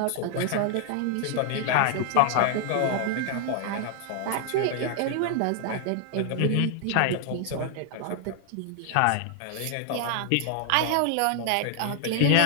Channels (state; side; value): different; both; correlation 0.00